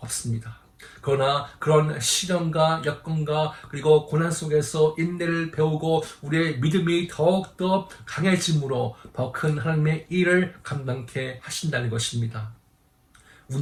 그러나 그런 시련과 여건과 그리고 고난 속에서 인내를 배우고 우리의 믿음이 더욱더 강해짐으로 더 큰 하나님의 일을 감당케 하신다는 것입니다.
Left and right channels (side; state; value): both; identical; correlation 1.00